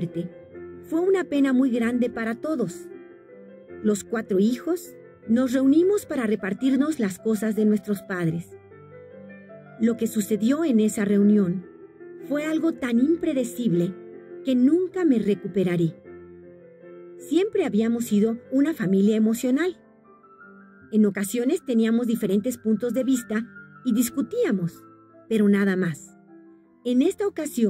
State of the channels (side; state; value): both; identical; correlation 1.00